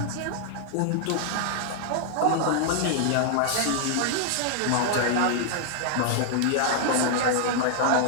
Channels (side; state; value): both; different; correlation -0.01